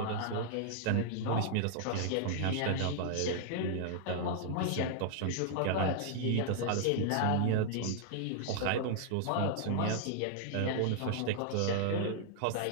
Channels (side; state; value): both; different; correlation -0.01